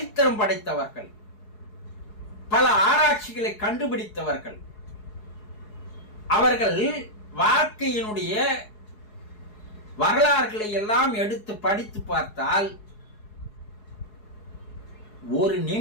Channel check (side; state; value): right; late; 4.7 ms